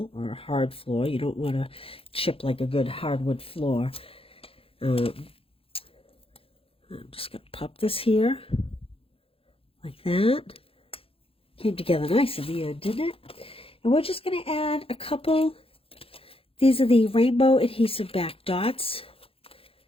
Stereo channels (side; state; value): right; late; 0.27 ms